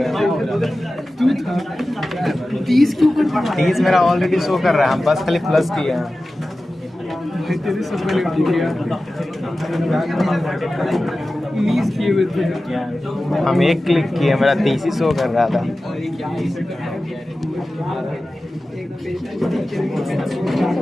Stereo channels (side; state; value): both; normal; correlation 0.95